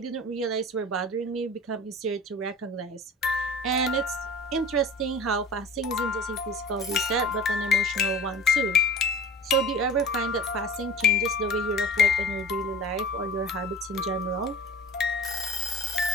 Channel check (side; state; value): both; normal; correlation 0.40